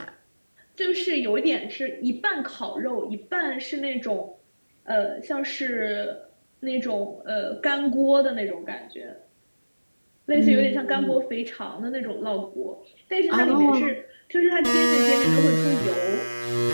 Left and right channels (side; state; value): both; inverted; correlation -1.00